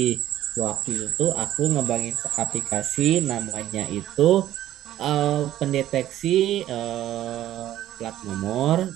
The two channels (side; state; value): left; quieter; 13.0 dB